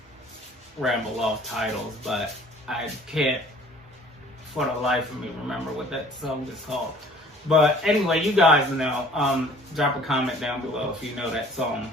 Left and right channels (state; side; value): normal; both; correlation 0.52